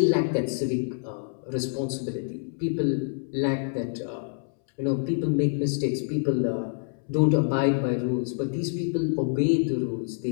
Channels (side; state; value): right; silent; 60 dB below the other